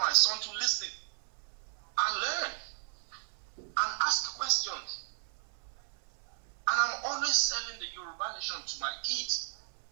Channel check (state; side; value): silent; left; 55 dB below the other